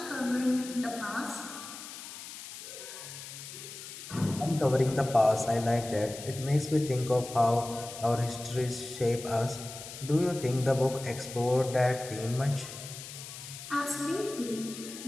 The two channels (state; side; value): noise; left; hiss, 12 dB below the sound